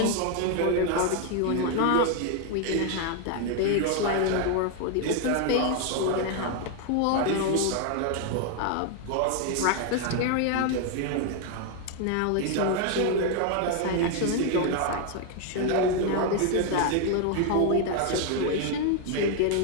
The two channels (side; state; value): both; different; correlation 0.01